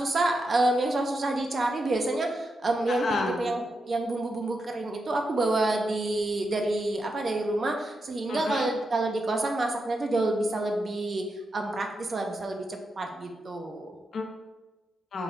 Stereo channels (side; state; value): both; normal; correlation 0.86